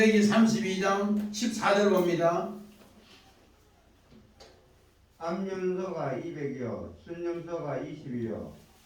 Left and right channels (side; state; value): both; identical; correlation 1.00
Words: 32장 14절 봅니다. 암염소가 200이요 순염소가 20이요